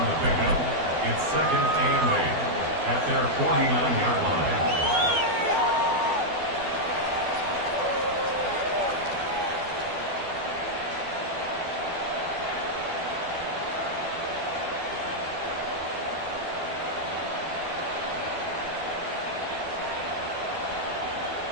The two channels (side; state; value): left; late; 12 ms